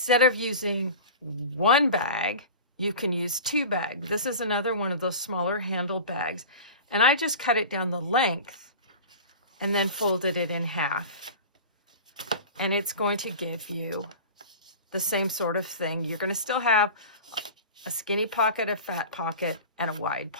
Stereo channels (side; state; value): both; inverted; correlation -0.34